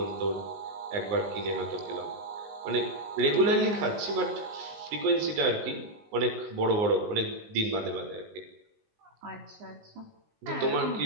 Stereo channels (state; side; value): late; left; 19 ms